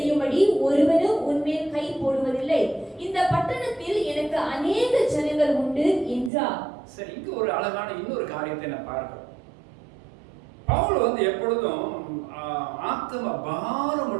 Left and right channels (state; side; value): drops out; left; at 6.3 s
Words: ஒருவனும் உன்மேல் கை போடுவதில்லை, இந்த பட்டணத்தில் எனக்கு அநேக ஜனங்கள் உண்டு என்றார். சரி, இங்கு ஒரு அழகான இன்னொரு காரியத்தை நான் பார்க்கிறோம். பவுல் எப்பொழுதும் ஆத்ம